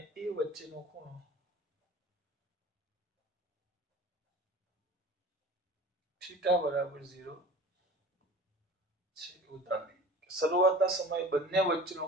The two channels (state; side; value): normal; both; correlation 0.40